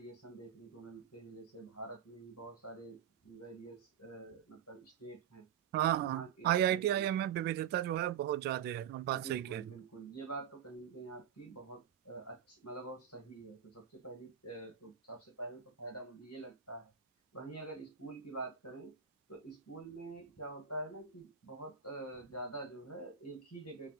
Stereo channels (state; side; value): quieter; left; 8.8 dB